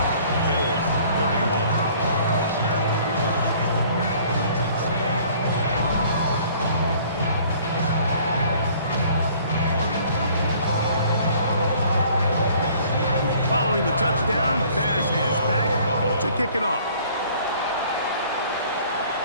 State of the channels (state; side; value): inverted; both; correlation -0.55